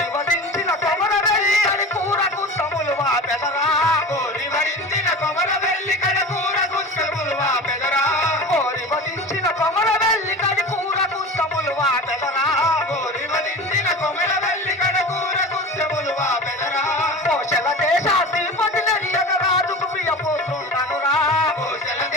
వధించిన కొమర వెళ్ళి అని కూరకు తములు వాపెదరా. కోరి వరించిన కొమర వెళ్ళి కడకూర గుస్తములు వాపెదరా. కోరి వధించిన కొమర వెళ్ళి కడి కూరకు తములు వాపెదరా. కోరి వరించిన కొమర వెళ్ళి కడకూర గుస్తములు వాపెదరా. కోశల దేశాధిపతి నరియగ రాజుకు ప్రియపుత్రుండనురా. కోశల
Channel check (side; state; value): both; normal; correlation 0.33